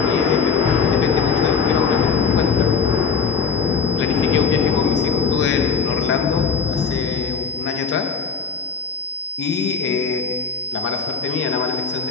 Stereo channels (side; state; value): right; quieter; 5.8 dB